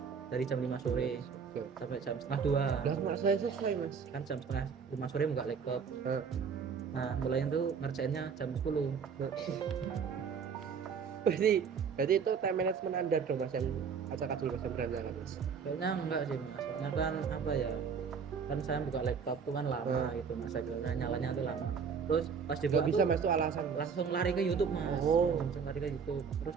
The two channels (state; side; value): quieter; left; 6.2 dB